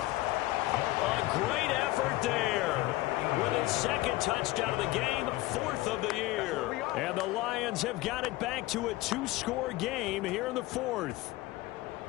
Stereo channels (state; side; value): quieter; right; 18.2 dB